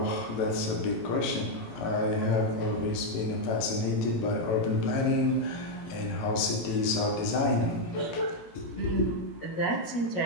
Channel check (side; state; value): right; late; 18 ms